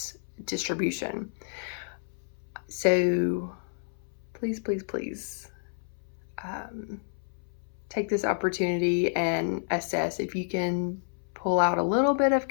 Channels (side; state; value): right; silent; 58 dB below the other